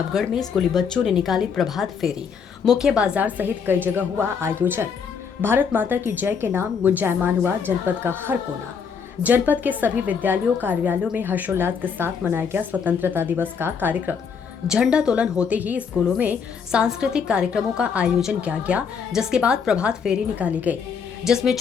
में स्कूली बच्चों ने निकाली प्रभात फेरी। मुख्य बाजार सहित कई जगह हुआ आयोजन। भारत माता की जय के नाम गुंजायमान हुआ जनपद का हर कोना। जनपद के सभी विद्यालयों कार्यालयों में हर्षोल्लास के साथ मनाया गया स्वतंत्रता दिवस का कार्यक्रम। झंडा तोलन होते ही स्कूलों में सांस्कृतिक कार्यक्रमों का आयोजन किया गया, जिसके बाद प्रभात फेरी निकाली गई, जिसमें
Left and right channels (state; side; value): quieter; right; 6.3 dB